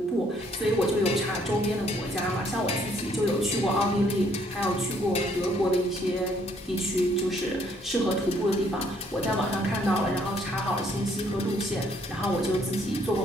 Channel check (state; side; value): normal; both; correlation 0.66